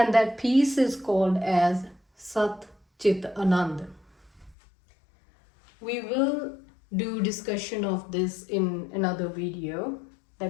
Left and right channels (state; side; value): drops out; right; at 4.5 s